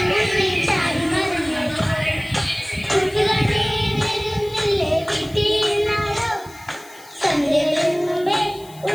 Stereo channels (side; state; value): left; noise; hiss, 22 dB below the sound